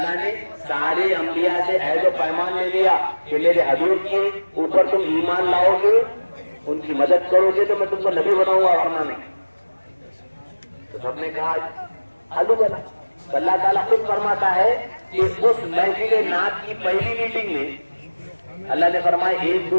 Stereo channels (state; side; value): inverted; both; correlation -1.00